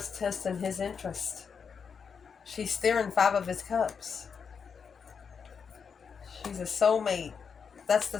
testing his interest. She's steering 5 of his cups. She's a soulmate. That's the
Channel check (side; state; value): right; quieter; 6.2 dB